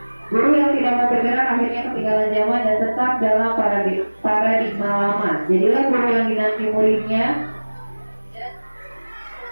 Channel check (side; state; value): both; inverted; correlation -1.00